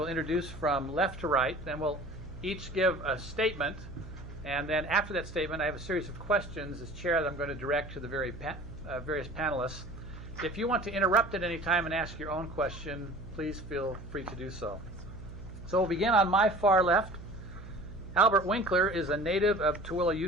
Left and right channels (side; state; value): right; noise; hum, 14 dB below the sound